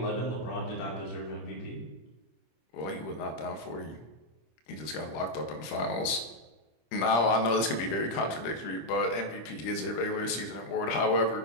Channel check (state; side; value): late; right; 26 ms